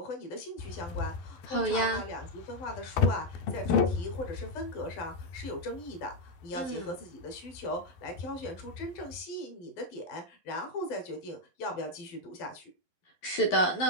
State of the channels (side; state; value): right; late; 11 ms